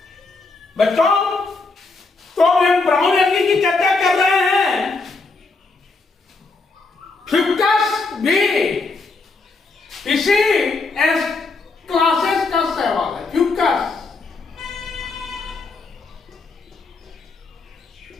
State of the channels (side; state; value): right; quieter; 3.8 dB